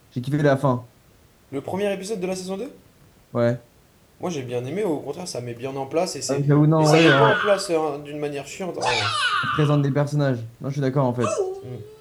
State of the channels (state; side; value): identical; both; correlation 1.00